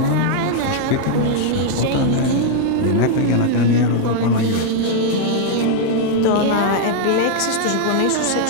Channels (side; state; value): both; different; correlation -0.01